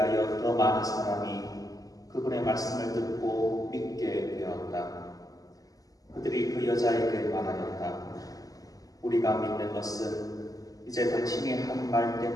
더 많은 사람이 그분의 말씀을 듣고 믿게 되었다. 그들이 그 여자에게 말하였다. 우리가 믿는 것은 이제 당신이 한 말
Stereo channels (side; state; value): right; late; 0.17 ms